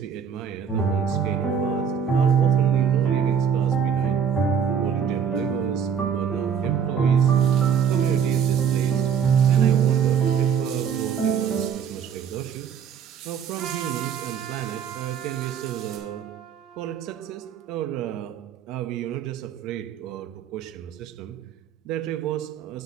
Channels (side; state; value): left; quieter; 7.6 dB